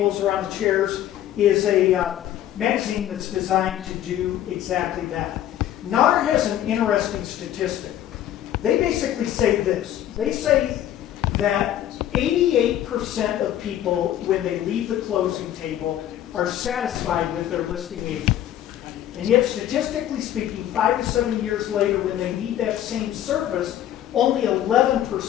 or on the chairs, is a magazine that's designed to do exactly that. NAR has an interesting statistic. They basically say this. They say that 88% of people, when they leave the closing table, are satisfied with their listing agent. And yet, statistically speaking, 5 to 7 years later, when they need that same service, only 11%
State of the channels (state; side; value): quieter; right; 11.8 dB